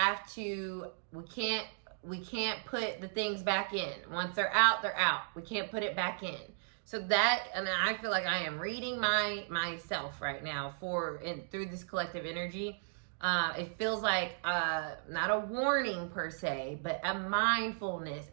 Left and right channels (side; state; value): left; silent; digital silence